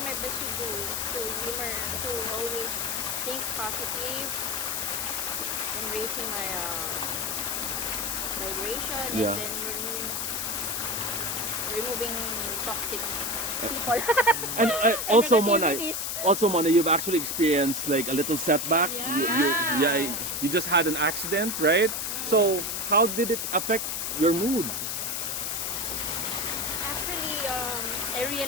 my best to humor, to always think positive and raising my vibration Yeah. and then removing toxic people. And also, Mona, Negativities. you've actually experienced like a little setback. You just had an accident, right? So how did it affect your mood? Actually, I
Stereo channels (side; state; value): left; noise; hiss, 2 dB below the sound